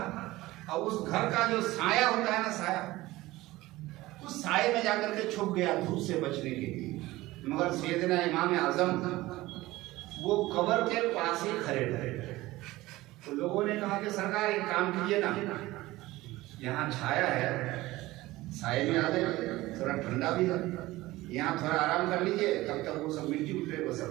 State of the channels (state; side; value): quieter; left; 18.4 dB